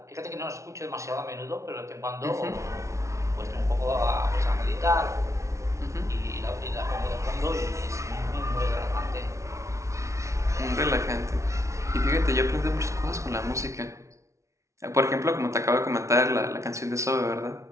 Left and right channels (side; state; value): left; late; 0.14 ms